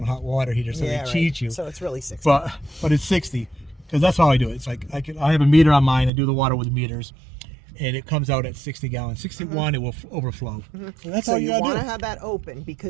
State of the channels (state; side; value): drops out; left; at 6.1 s